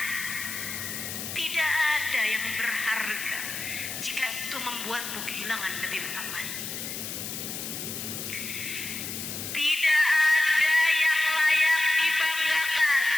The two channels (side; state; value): left; noise; hiss, 6 dB below the sound